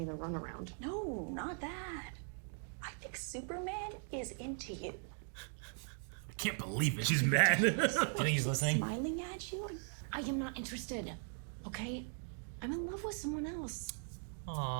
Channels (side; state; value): left; silent; 51 dB below the other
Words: the runaround. No, not that. I think Superman is into you. I can't believe it. She's mad. Do you think he's listening? Smiling at you? I am not interested. Okay? I'm in love with someone else.